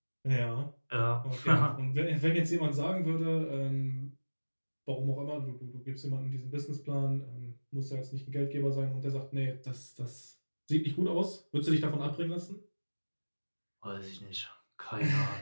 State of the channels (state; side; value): inverted; both; correlation -1.00